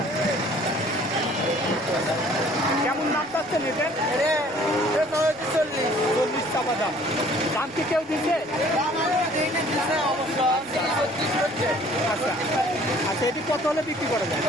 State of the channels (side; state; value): right; noise; rumble, 26 dB below the sound